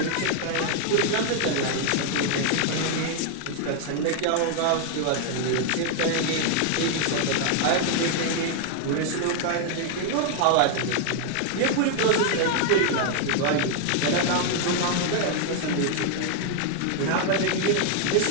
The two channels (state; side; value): different; both; correlation 0.00